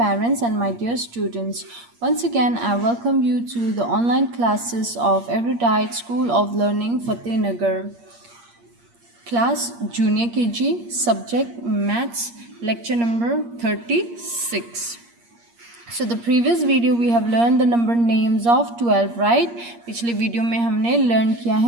and my dear students. Once again, I welcome you to the online classes of Erudite School of Learning Fatehnagar. Class Junior KG, subject Maths, lecture number 36. So the previous video we have learned the number names of 12, right? पिछले video में हमने learn किया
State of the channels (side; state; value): left; late; 8.5 ms